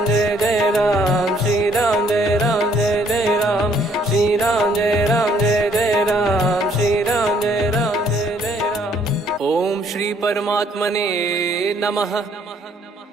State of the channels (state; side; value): normal; both; correlation 0.64